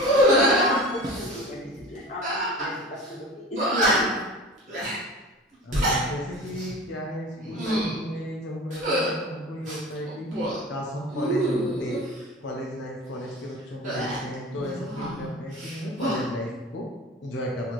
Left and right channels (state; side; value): normal; both; correlation 0.36